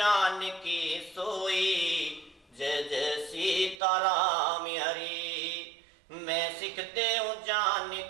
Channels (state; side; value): drops out; left; at 3.8 s